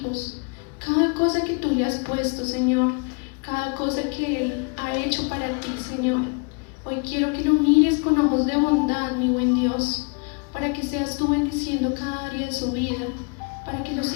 cada cosa que tú le has puesto, Señor, cada cosa que Él ha hecho para ti, Señor. Hoy quiero que lo mires con ojos de bondad, mi buen Dios, para que seas tú bendiciendo cada área de su vida, para que lo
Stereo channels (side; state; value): right; quieter; 34.5 dB